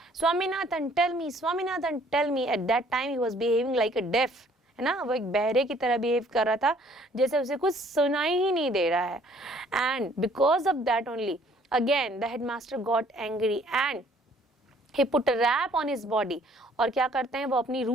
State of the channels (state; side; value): normal; both; correlation 0.59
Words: Swaminathan tell me, Swaminathan tell me. At that time he was behaving like a deaf, है ना, वो एक बहरे की तरह behave कर रहा था, जैसे उसे कुछ सुनाई ही नहीं दे रहा है। And because of that only again the headmaster got angry and he put a rap on his body. और क्या करते हैं वो अपनी